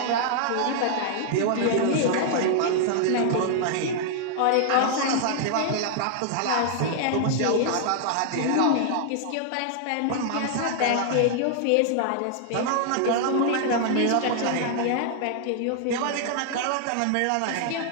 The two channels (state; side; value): different; both; correlation 0.00